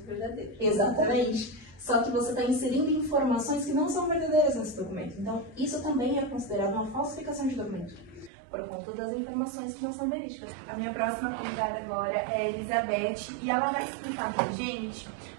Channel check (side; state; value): left; drops out; at 8.3 s